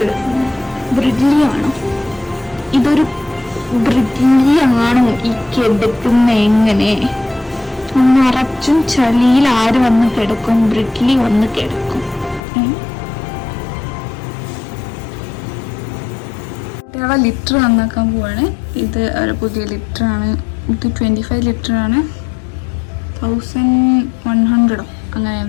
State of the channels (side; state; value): right; drops out; at 12.4 s